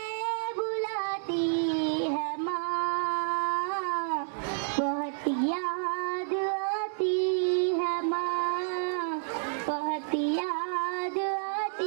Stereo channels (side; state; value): left; silent; digital silence